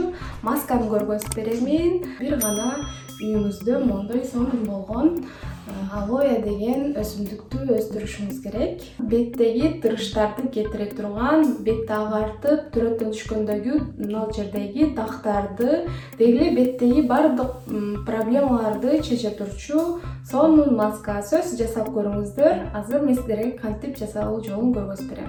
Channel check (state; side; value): identical; both; correlation 1.00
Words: масканы көргөзүп беремин. Бир гана үйүңүздө мондой сонун болгон алоэ деген өсүмдүктү өстүрүшүңүз керек. Беттеги тырыштарды кетире турган, бетти агартып, түрөттөн түшкөндөгү мына жердеги дактарды, деги эле беттеги баардык проблемаларды чече турчу сонун маска. Сөз жасап көрүңүздөр. Азыр мен сиздерге кантип жасалуу жолун көргөзүп